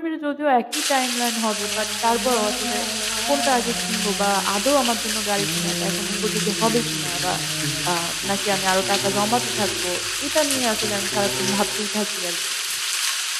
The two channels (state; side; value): identical; both; correlation 1.00